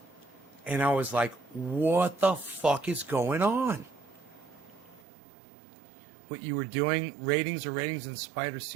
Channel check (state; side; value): drops out; left; at 5.0 s